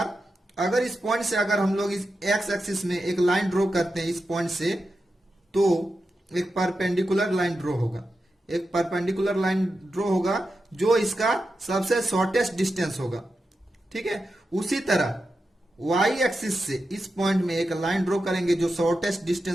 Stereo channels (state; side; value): normal; both; correlation 0.90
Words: अगर इस पॉइंट से अगर हम लोग इस x एक्सिस में एक लाइन ड्रॉ करते हैं इस पॉइंट से, तो एक परपेंडिकुलर लाइन ड्रॉ होगा। एक परपेंडिकुलर लाइन ड्रॉ होगा जो इसका सबसे शॉर्टेस्ट डिस्टेंस होगा, ठीक है। उसी तरह y एक्सिस से इस पॉइंट में एक लाइन ड्रॉ करेंगे जो शॉर्टेस्ट